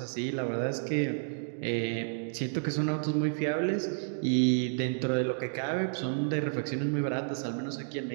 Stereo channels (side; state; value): left; silent; digital silence